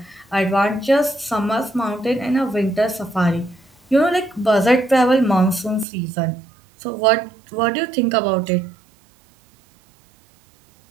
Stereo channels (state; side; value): drops out; left; at 5.9 s